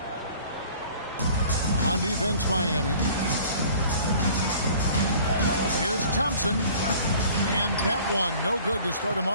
On defense, Miami. Here's Thompson. And that one, no good to start him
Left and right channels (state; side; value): inverted; both; correlation -0.49